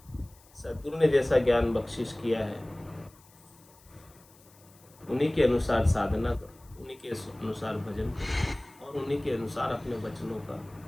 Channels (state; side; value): noise; left; hiss, 27 dB below the sound